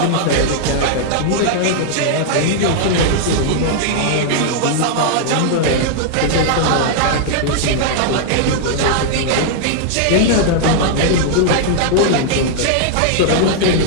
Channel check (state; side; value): different; both; correlation -0.01